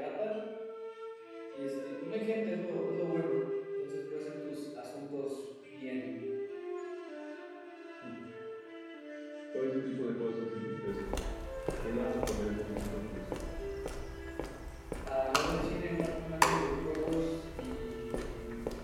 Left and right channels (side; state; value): both; identical; correlation 1.00